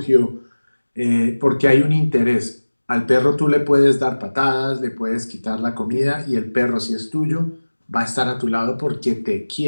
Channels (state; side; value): inverted; both; correlation -1.00